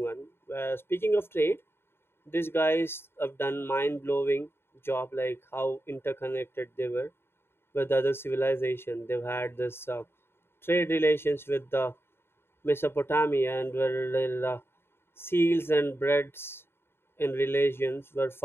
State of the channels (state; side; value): late; right; 0.11 ms